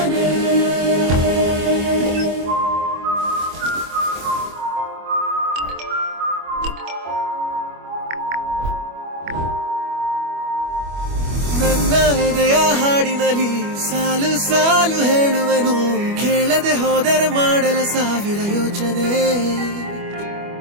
ನನ್ನ ಎದೆಯ ಹಾಡಿನಲ್ಲಿ ಸಾಲು ಸಾಲು ಹೇಳುವೆನು ಕೇಳದೆ ಹೋದರೆ ಮಾಡಲ ಸಾವಿರ ಯೋಚನೆ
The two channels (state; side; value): late; left; 25 ms